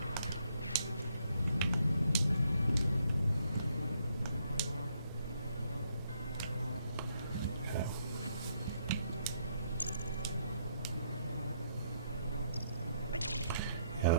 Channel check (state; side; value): inverted; both; correlation -0.72